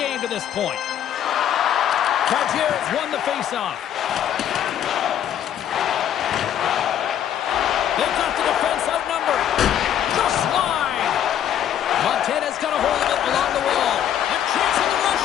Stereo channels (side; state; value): right; quieter; 10.2 dB